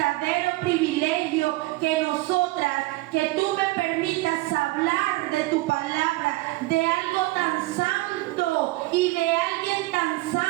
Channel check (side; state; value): left; quieter; 20.4 dB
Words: privilegio que nosotras, que tú me permitas hablar de tu palabra, de algo tan santo y de alguien tan